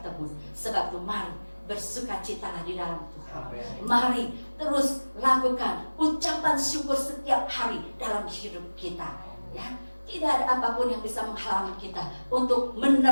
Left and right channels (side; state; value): both; inverted; correlation -1.00